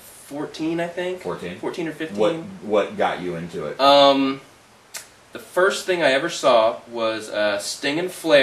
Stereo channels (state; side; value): identical; both; correlation 1.00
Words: I think. 14? 14 or 15. What got you into it? The first thing I ever saw was Sting and